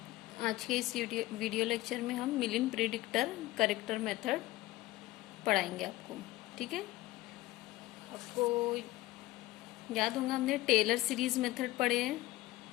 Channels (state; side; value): quieter; right; 17.9 dB